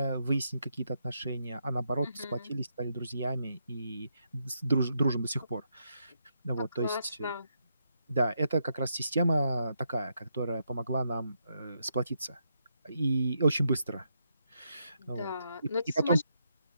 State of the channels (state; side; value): inverted; both; correlation -0.80